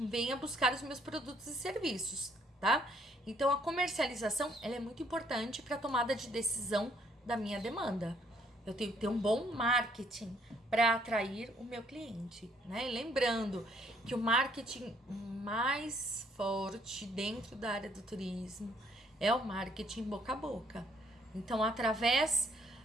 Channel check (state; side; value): normal; both; correlation 0.66